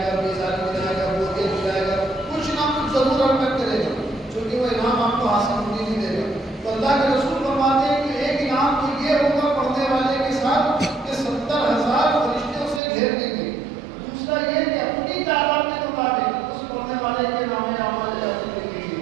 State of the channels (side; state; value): left; drops out; at 12.8 s